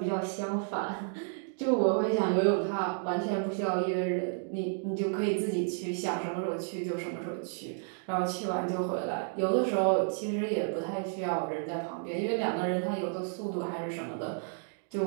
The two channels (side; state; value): left; silent; 57 dB below the other